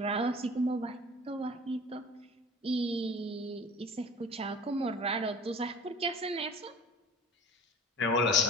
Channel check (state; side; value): normal; both; correlation 0.43